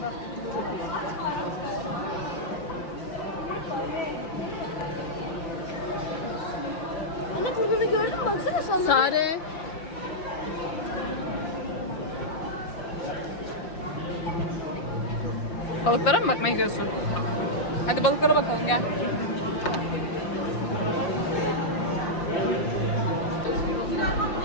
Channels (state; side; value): late; right; 5.7 ms